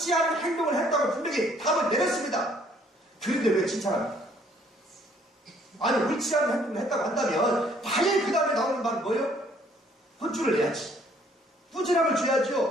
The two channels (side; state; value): both; normal; correlation 0.62